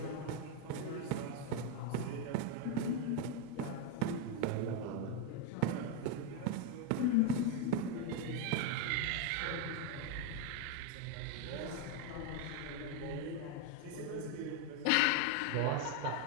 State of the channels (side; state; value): both; different; correlation 0.01